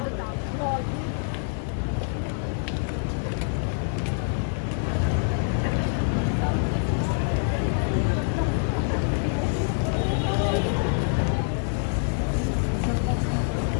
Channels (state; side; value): silent; right; digital silence